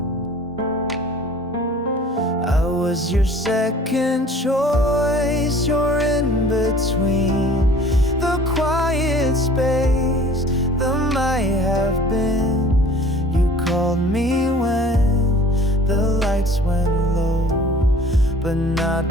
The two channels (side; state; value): both; normal; correlation 0.48